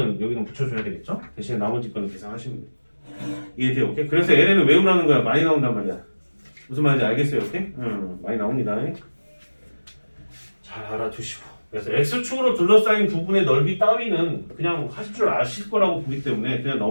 여기는 붙여줘야 되겠죠? 대신에 나머지 거는 계산하시면 돼요. 이해돼요? 오케이? 그래서 ln은 외우라는 거야. 많이 나온단 말이야. 무슨 말인지 알겠어요? 오케이? 많이 나옵니다. 잘 알아두시고. 그래서 x축으로 둘러싸인 부분의 넓이 따위는 그냥 하실 줄 아실 거라고 보기 때문에 그냥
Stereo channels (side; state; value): both; inverted; correlation -1.00